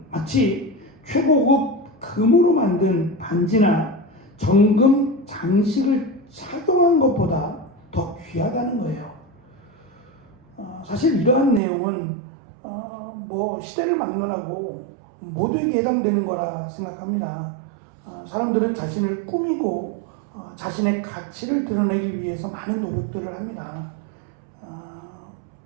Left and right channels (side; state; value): left; drops out; at 11.6 s